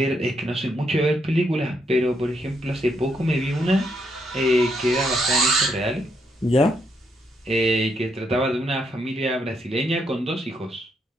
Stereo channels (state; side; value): normal; both; correlation 0.76